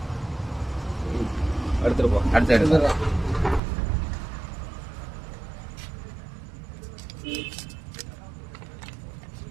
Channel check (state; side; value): drops out; left; at 3.6 s